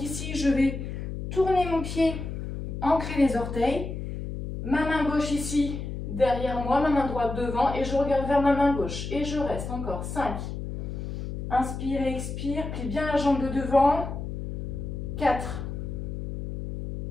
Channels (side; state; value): left; noise; hum, 6 dB below the sound